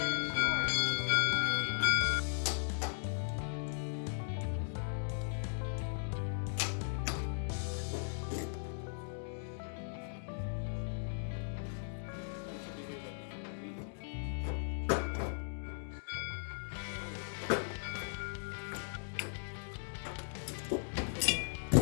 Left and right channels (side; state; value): right; silent; digital silence